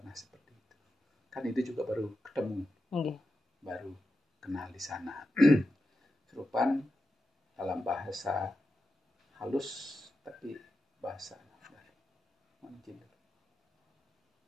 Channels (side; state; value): both; normal; correlation 0.90